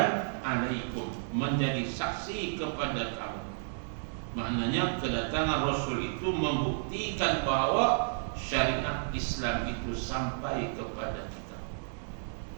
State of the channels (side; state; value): left; silent; digital silence